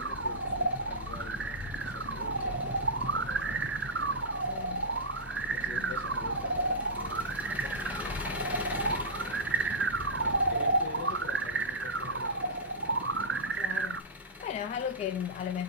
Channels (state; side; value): normal; both; correlation -0.13